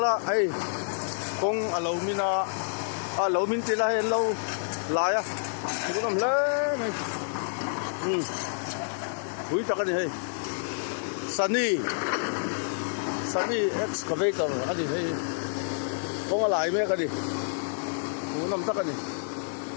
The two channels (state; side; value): silent; right; digital silence